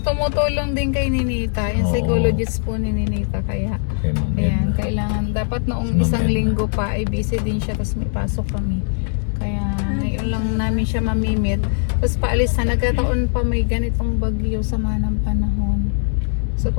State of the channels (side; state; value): right; silent; digital silence